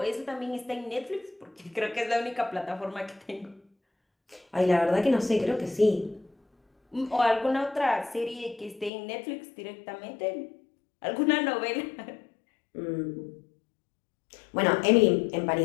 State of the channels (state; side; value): drops out; right; at 8.9 s